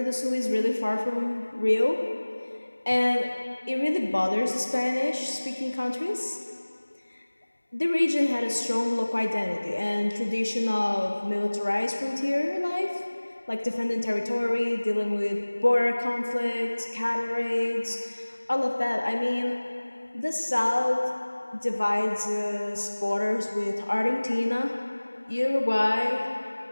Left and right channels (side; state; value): both; inverted; correlation -1.00